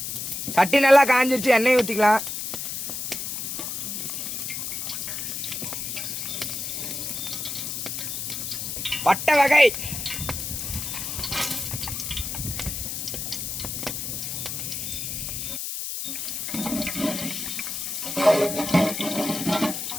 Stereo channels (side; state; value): left; noise; hiss, 4 dB below the sound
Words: சட்டி நல்லா காஞ்சிருச்சு, எண்ணெய் ஊத்திக்கலாம். பட்டை வகை